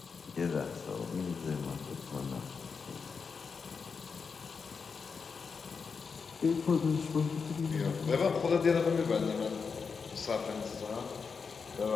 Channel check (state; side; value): quieter; right; 5.4 dB